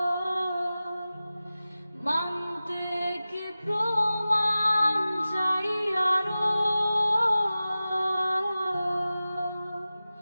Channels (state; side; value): inverted; both; correlation -0.96